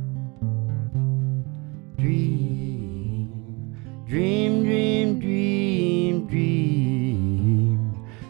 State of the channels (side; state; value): left; quieter; 27.6 dB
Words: Dream, dream, dream, dream, dream,